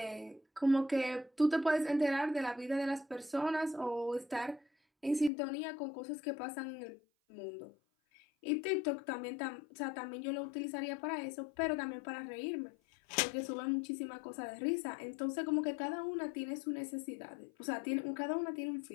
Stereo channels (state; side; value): drops out; right; at 5.3 s